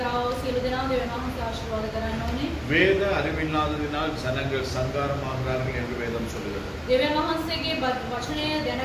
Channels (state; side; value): identical; both; correlation 1.00